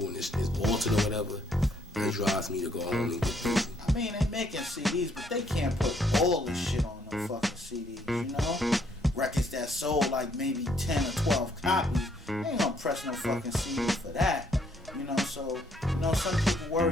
and it's altered or whatever, it drives me to go home and get busy. I mean, they making CDs, but they can't put all this shit on no fucking CDs, you know? Records that sold like maybe 10 or 12 copies, they ain't gonna press no fucking CD for that, you know? So, you know, some people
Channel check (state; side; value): normal; both; correlation 0.69